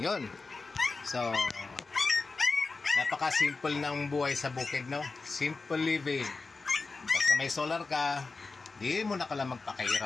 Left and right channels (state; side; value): quieter; right; 4.0 dB